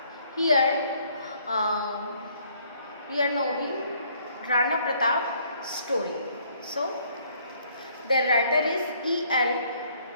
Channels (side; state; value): both; inverted; correlation -0.63